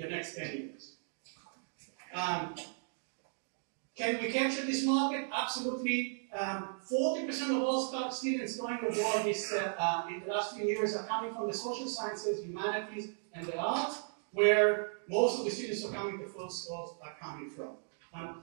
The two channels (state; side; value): silent; left; digital silence